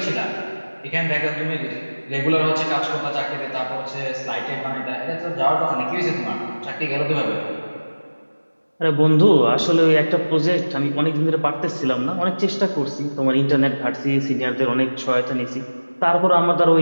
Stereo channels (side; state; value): both; inverted; correlation -1.00